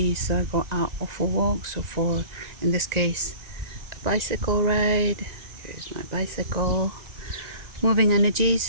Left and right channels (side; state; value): left; late; 1.9 ms